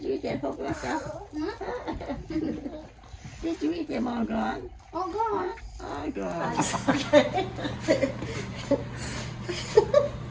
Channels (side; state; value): both; identical; correlation 1.00